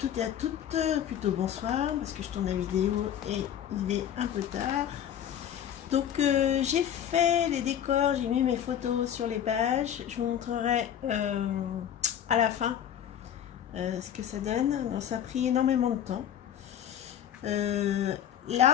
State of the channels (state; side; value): quieter; right; 9.9 dB